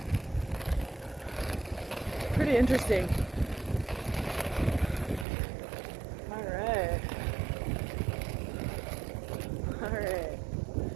Pretty interesting. Alright.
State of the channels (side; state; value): left; drops out; at 5.2 s